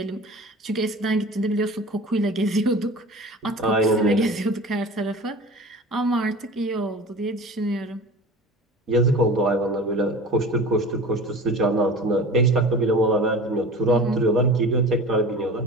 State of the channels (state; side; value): normal; both; correlation 0.38